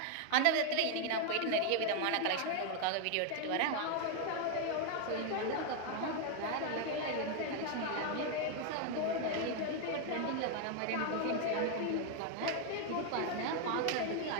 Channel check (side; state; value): both; different; correlation 0.01